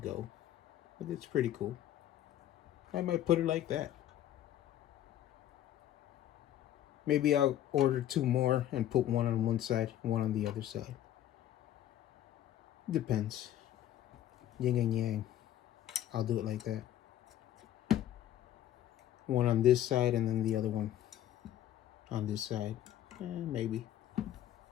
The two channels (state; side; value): quieter; right; 12.1 dB